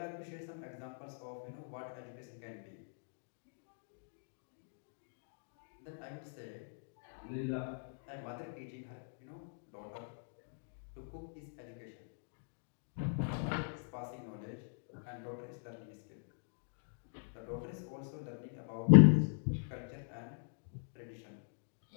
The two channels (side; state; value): right; silent; digital silence